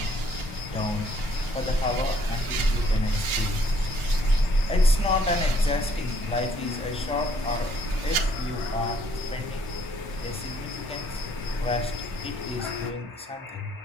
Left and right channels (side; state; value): both; normal; correlation 0.65